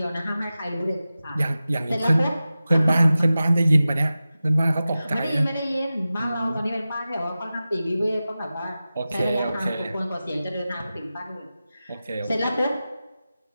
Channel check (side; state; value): both; inverted; correlation -0.95